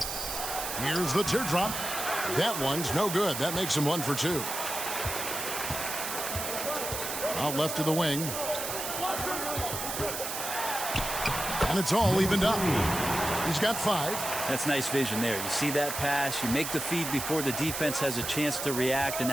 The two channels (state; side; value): noise; right; hiss, 4 dB below the sound